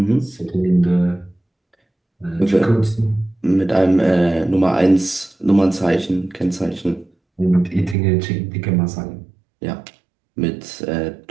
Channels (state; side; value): drops out; left; at 8.0 s